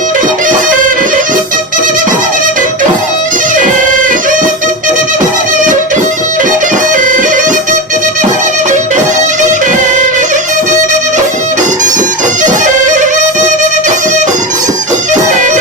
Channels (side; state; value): both; normal; correlation 0.19